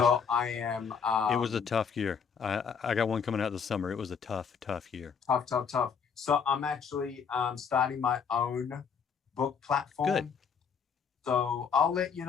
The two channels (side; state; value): right; quieter; 6.4 dB